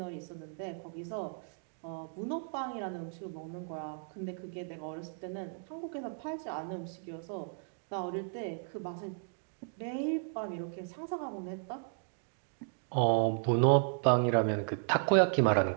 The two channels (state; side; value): silent; left; digital silence